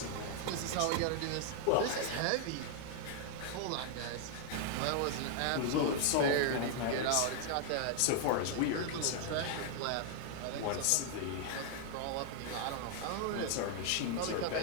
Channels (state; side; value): different; both; correlation 0.00